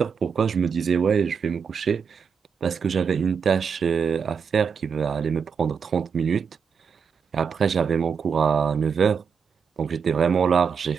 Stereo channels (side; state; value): left; quieter; 6.3 dB